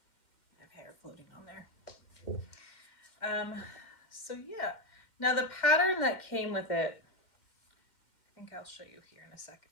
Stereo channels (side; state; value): right; late; 2.1 ms